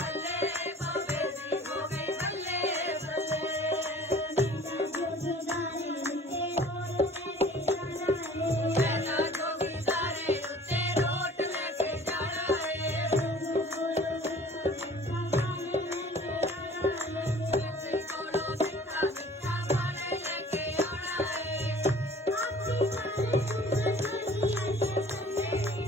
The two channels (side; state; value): both; normal; correlation 0.49